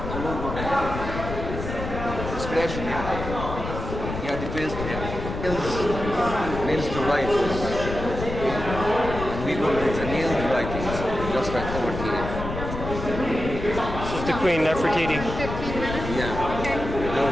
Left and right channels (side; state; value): left; noise; rumble, 6 dB below the sound